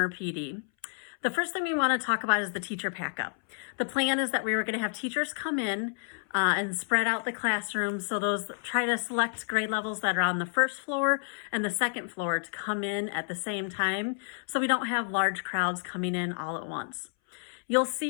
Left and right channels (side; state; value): right; silent; 58 dB below the other